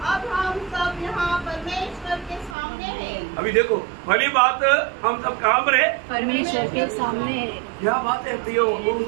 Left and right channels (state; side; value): drops out; left; at 2.6 s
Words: अब हम सब यहाँ परमेश्वर के सामने हैं। अभी देखो पहली बात हम सब कहाँ पर है? परमेश्वर के सामने। क्या बात है प्रियो,